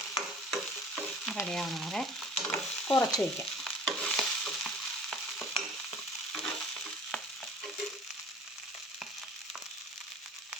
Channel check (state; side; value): normal; both; correlation 0.47